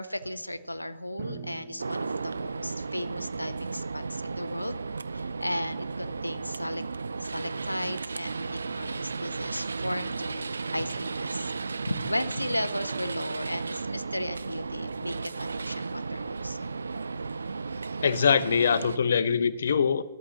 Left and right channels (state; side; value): inverted; both; correlation -0.84